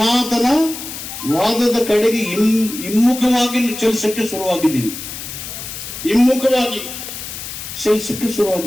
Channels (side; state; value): left; noise; hiss, 9 dB below the sound